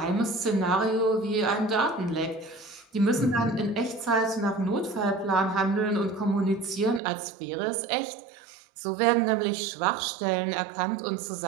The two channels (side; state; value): left; drops out; at 7.0 s